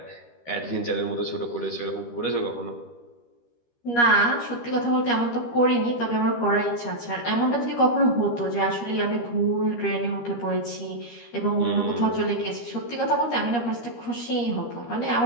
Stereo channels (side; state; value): right; late; 13 ms